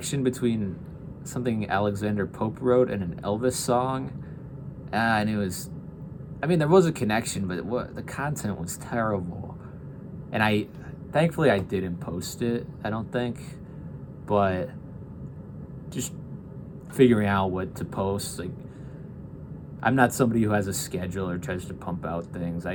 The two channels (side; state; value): both; identical; correlation 1.00